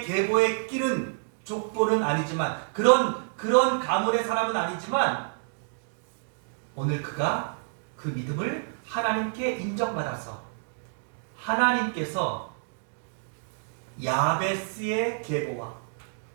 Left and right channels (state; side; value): silent; left; digital silence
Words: 계보에 끼는 족보는 아니지만, 그런 가문의 사람은 아니지만, 오늘 그가 그 믿음을 하나님께 인정받아서 하나님께서 야베스의 계보와